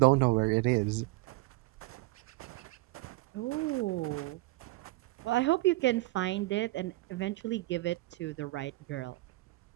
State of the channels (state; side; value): quieter; left; 20.6 dB